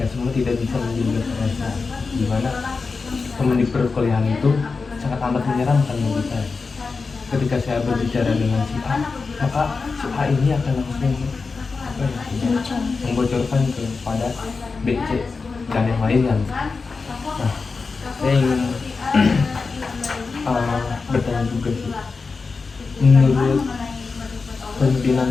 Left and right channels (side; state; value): right; quieter; 4.5 dB